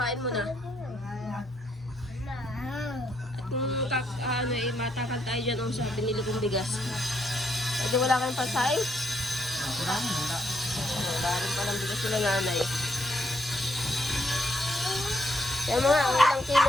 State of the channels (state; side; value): normal; both; correlation 0.75